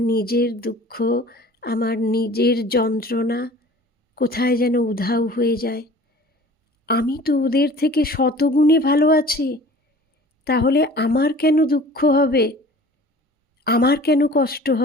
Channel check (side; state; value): both; normal; correlation 0.45